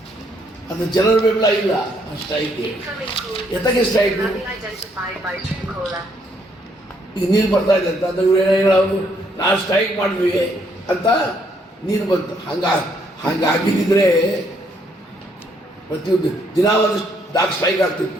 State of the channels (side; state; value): both; normal; correlation 0.70